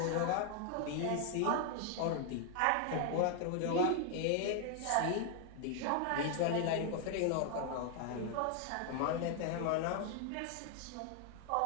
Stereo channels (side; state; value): both; different; correlation 0.00